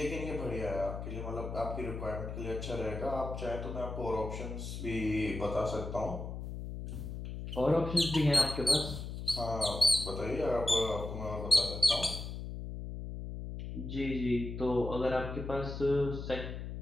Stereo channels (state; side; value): noise; left; hum, 7 dB below the sound